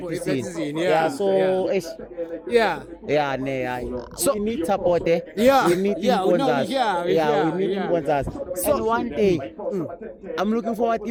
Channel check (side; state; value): both; identical; correlation 1.00